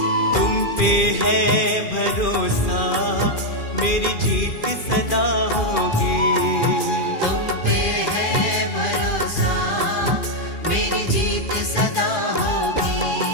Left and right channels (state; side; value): late; right; 2.4 ms